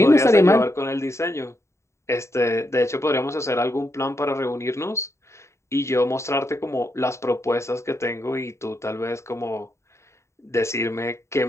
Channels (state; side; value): late; right; 0.14 ms